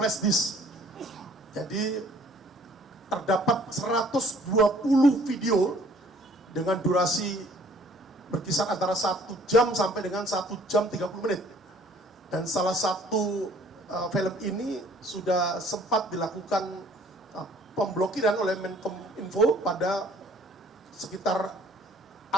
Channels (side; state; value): both; normal; correlation 0.57